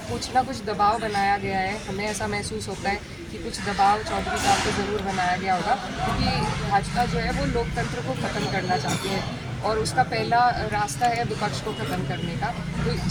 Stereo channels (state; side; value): identical; both; correlation 1.00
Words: कुछ ना कुछ दबाव बनाया गया है, हमें ऐसा महसूस होता है कि कुछ दबाव चौधरी साहब को ज़रूर बनाया गया होगा, क्योंकि भाजपा जो है वो लोकतंत्र को ख़त्म करना चाहती है और उसका पहला रास्ता है विपक्ष को ख़त्म करने का। तो